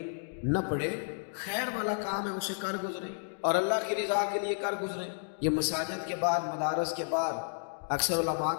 نہ پڑے، خیر والا کام ہے اسے کر گزریں اور اللہ کی رضا کے لیے کر گزریں۔ یہ مساجد کے بعد، مدارس کے بعد اکثر علماء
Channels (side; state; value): right; silent; digital silence